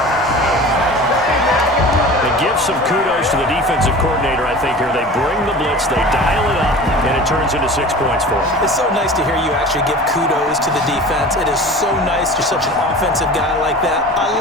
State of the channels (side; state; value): both; normal; correlation 0.38